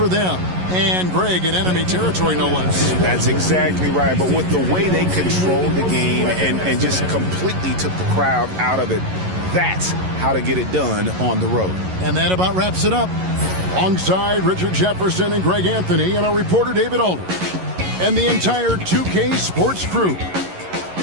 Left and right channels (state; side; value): late; left; 11 ms